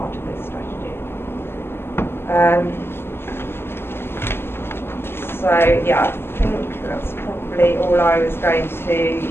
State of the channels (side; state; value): right; late; 0.11 ms